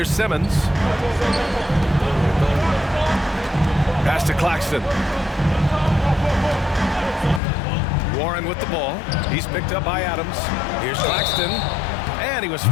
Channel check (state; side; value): drops out; right; at 7.4 s